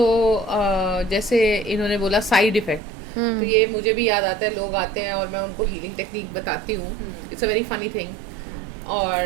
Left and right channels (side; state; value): left; drops out; at 2.8 s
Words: जैसे इन्होंने बोला साइड इफेक्ट, तो ये मुझे भी याद आता है. लोग आते हैं और मैं उनको हीलिंग टेक्निक बताती हूँ. It's a very funny thing